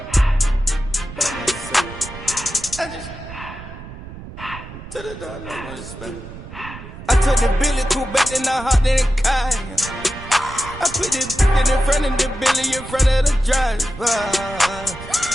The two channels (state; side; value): noise; right; rumble, 13 dB below the sound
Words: I took the Billy cool back, then I hopped in the car. I put the in front of the Billy, in front of the driver.